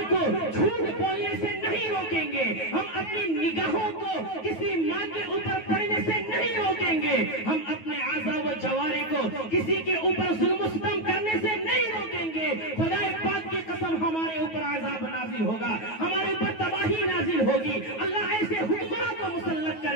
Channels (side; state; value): right; late; 9.3 ms